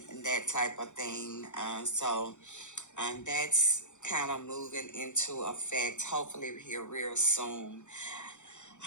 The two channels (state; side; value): late; right; 0.85 ms